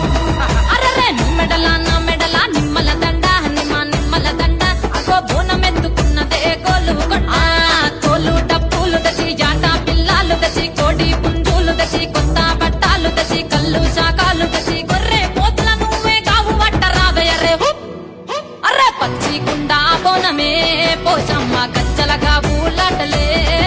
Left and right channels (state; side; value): identical; both; correlation 1.00